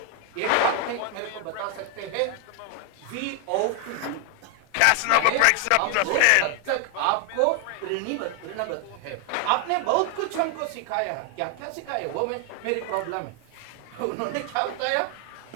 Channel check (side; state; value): both; different; correlation 0.00